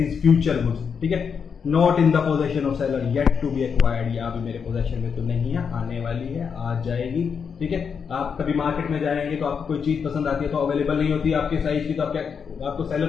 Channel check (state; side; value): quieter; right; 6.4 dB